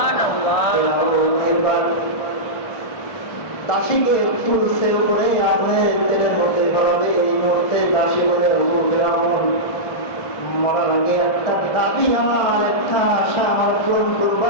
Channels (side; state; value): right; late; 1.6 ms